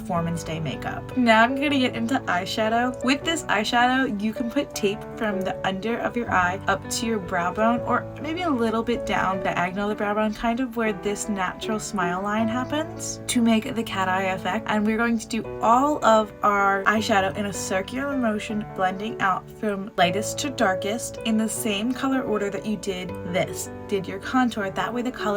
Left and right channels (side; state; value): both; identical; correlation 1.00